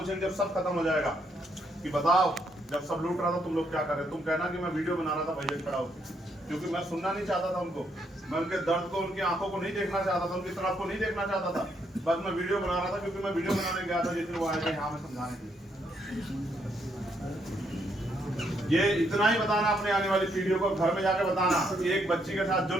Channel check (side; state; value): both; normal; correlation 0.74